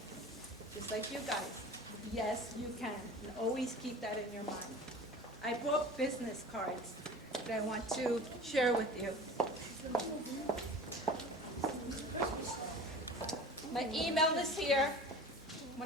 Just like you guys. Yes, you can. And always keep that in your mind. I brought business cards that I want to share with you. My email is here. I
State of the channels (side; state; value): both; normal; correlation 0.38